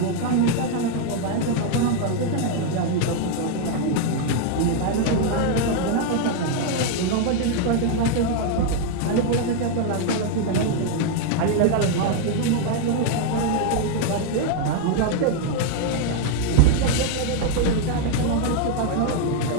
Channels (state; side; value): different; both; correlation 0.01